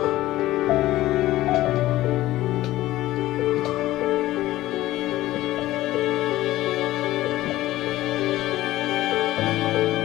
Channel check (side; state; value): right; quieter; 16.0 dB